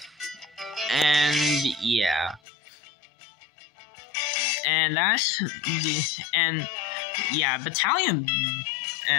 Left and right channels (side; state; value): right; drops out; at 2.4 s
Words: And yeah, and that's the Battalion